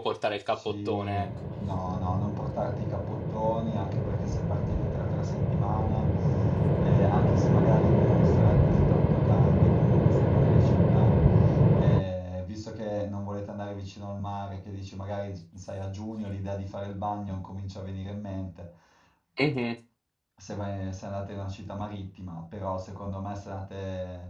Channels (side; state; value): both; identical; correlation 1.00